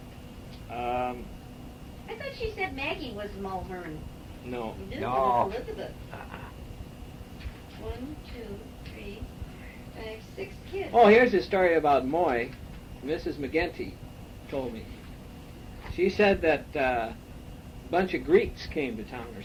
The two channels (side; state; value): both; identical; correlation 1.00